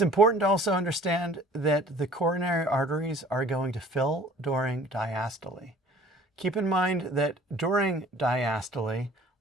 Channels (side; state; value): both; normal; correlation 0.50